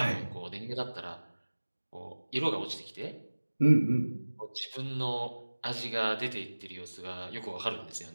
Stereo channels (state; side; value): inverted; both; correlation -1.00